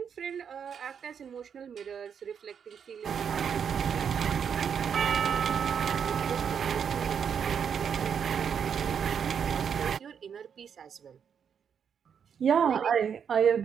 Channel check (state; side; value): quieter; left; 7.4 dB